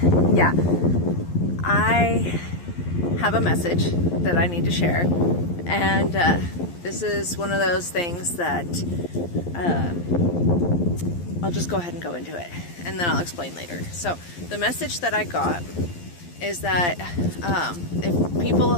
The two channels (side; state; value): right; late; 11 ms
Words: yeah, I have a message that I need to share. And this is one of those things that I'll just go ahead and go into it, and then I'll explain later. So the message that I got is that if people